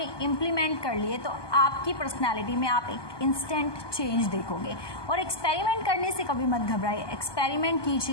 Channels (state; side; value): late; right; 1.2 ms